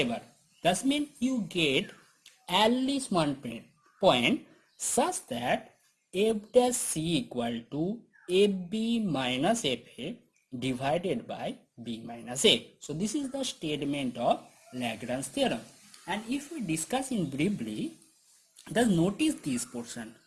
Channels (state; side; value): identical; both; correlation 1.00